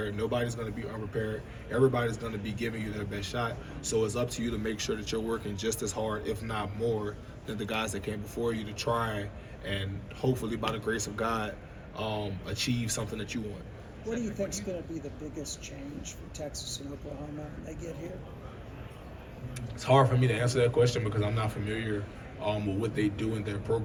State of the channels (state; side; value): identical; both; correlation 1.00